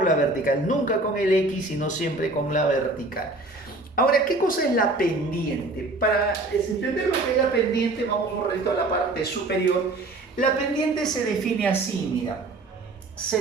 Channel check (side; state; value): left; quieter; 3.0 dB